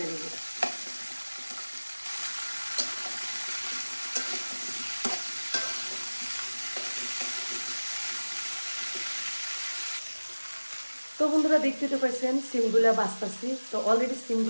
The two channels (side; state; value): both; inverted; correlation -1.00